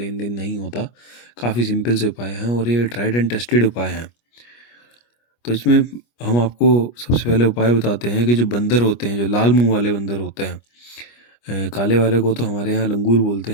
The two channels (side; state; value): right; late; 25 ms